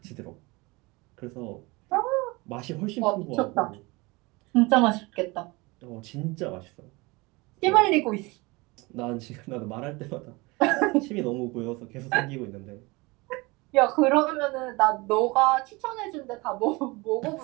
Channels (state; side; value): quieter; left; 24.4 dB